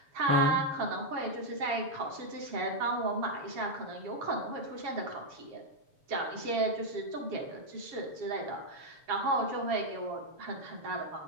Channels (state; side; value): late; left; 7.0 ms